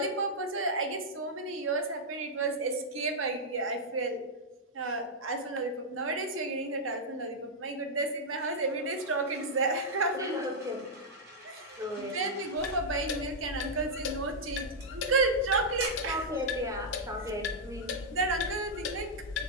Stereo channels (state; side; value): normal; both; correlation -0.06